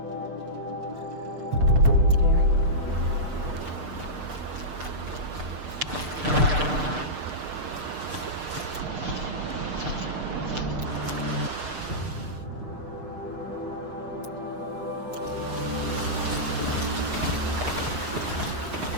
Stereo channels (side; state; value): left; late; 6.6 ms